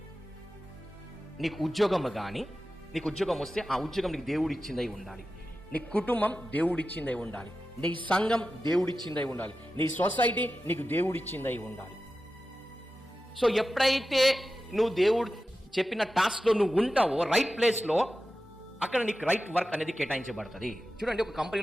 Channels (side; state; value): both; normal; correlation 0.93